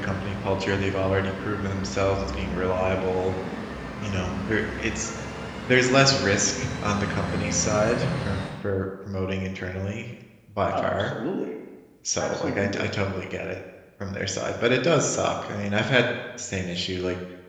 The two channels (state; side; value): identical; both; correlation 1.00